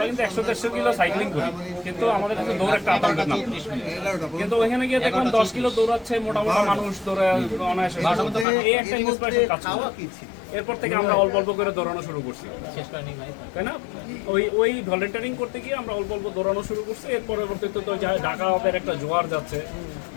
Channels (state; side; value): drops out; right; at 8.5 s